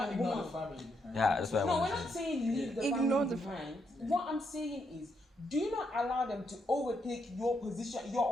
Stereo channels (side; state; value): both; normal; correlation 0.78